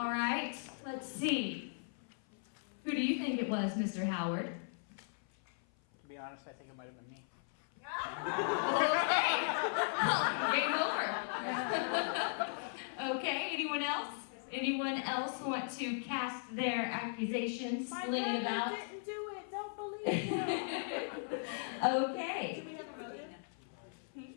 right, let's see. Who do you think it was, Mr. Howard? To be honest, I think it might have been me. Okay. Game over. Okay, anyone else? Anyone else want to cast their accusations, sling it about? Didn't do it. Don't believe him. Okay. Do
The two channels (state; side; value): silent; right; 53 dB below the other